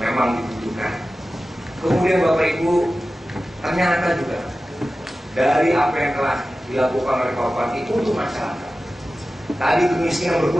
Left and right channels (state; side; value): normal; both; correlation 0.95